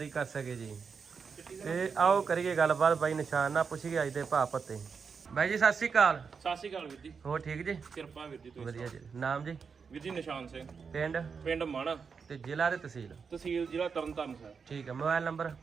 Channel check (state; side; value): quieter; left; 5.7 dB